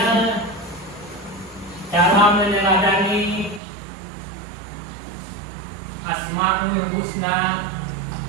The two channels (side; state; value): left; drops out; at 3.6 s